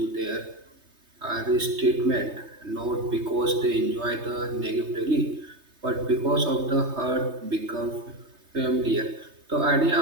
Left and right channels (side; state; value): left; late; 3.2 ms